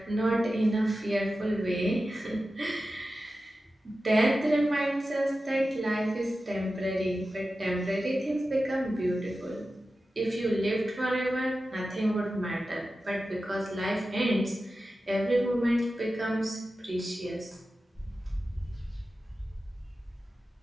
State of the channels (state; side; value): normal; both; correlation 0.93